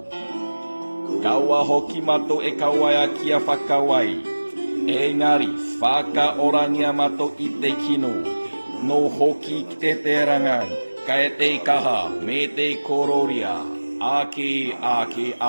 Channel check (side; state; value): both; inverted; correlation -1.00